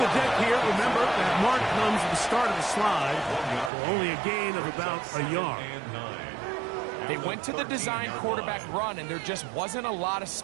deck here. Remember, that mark comes at the start of the slide for only a gain of about a yard. They went to the design quarterback run, and there just wasn't a lot of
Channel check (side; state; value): left; drops out; at 3.7 s